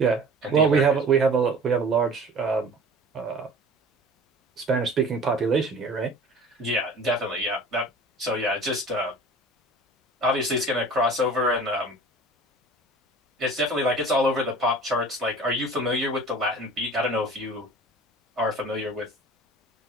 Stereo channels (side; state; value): both; normal; correlation 0.42